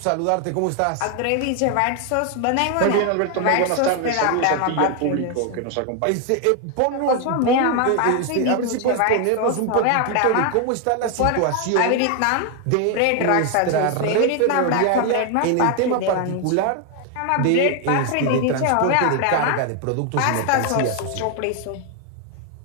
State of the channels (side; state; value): both; different; correlation 0.01